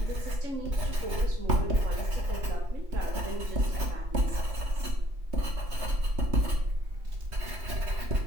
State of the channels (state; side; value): late; left; 3.2 ms